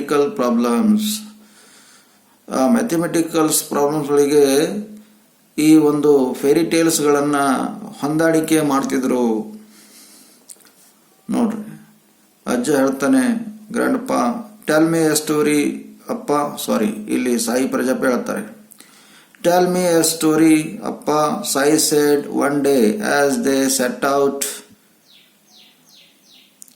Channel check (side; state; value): both; identical; correlation 1.00